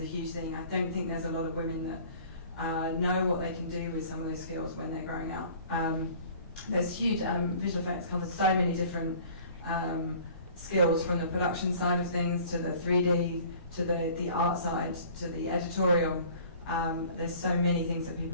a huge thing. I don't think there's a lot of women that know what they can do with some of those skills when they're growing up. There's huge, visual effects covers so many different skills, from the production side of things to the 3D, to the art side, to the editorial. There's so many things that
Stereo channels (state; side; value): inverted; both; correlation -0.49